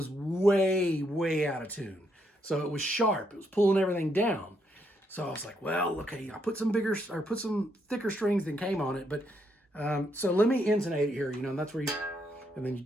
way, way out of tune. So it was sharp. It was pulling everything down. So I was like, well, okay, I put some thicker strings than came on it. But so let me intonate it here, you know, and that's where and then you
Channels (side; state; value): both; normal; correlation 0.76